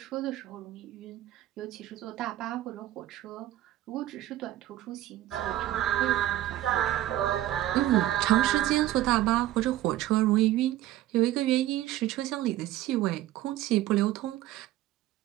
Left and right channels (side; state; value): left; quieter; 14.3 dB